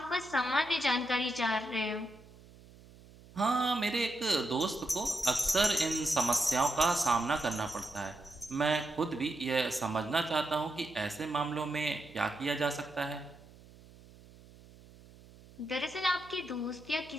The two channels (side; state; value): right; noise; hum, 22 dB below the sound